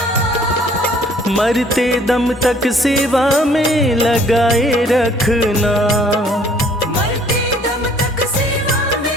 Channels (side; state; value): both; normal; correlation 0.58